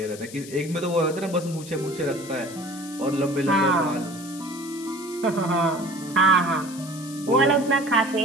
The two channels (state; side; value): noise; left; hiss, 15 dB below the sound